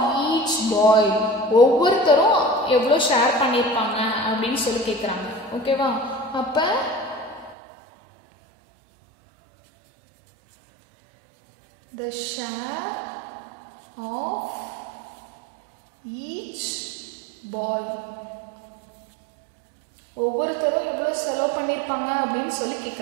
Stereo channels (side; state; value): left; drops out; at 7.6 s